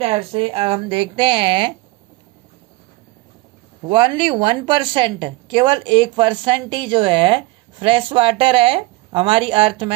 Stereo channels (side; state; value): left; quieter; 20.7 dB